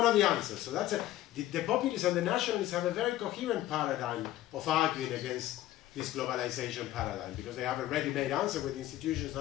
of the answers. So that's the populists and the nationalists have a very coherent paradigm of arguing against this globalization paradigm, because they have a ready-made answer with institutions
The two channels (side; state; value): right; quieter; 14.4 dB